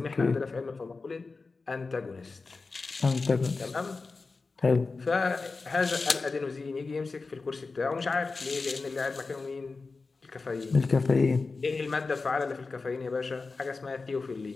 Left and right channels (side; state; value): right; quieter; 4.1 dB